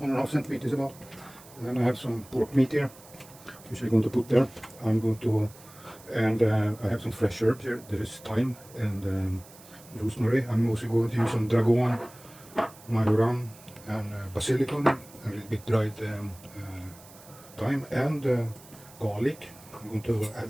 1.5 centimeters about. And then I have some pork meat here, which I'm going to put there. I have some fresh herbs here. There is thyme and rosemary. I'm also going to use some dragon, majoram, and basilicum, a little bit dried thyme and garlic. I'm going to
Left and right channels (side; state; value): right; noise; hiss, 22 dB below the sound